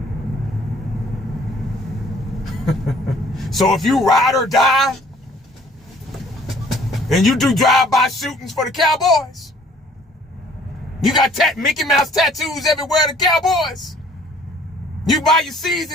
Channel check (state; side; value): normal; both; correlation 0.56